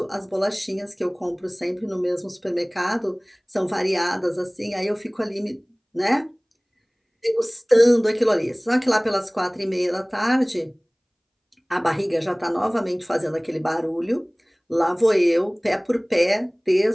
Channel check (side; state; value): both; identical; correlation 1.00